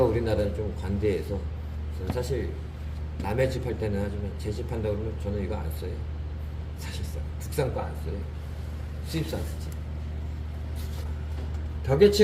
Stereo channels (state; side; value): identical; both; correlation 1.00